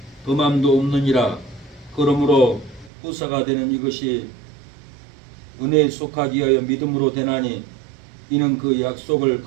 범함도 없느니라. 그러므로 후사가 되는 이것이 은혜에 속하기 위하여 믿음으로 되나니 이는 그 약속을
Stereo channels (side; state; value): left; drops out; at 2.9 s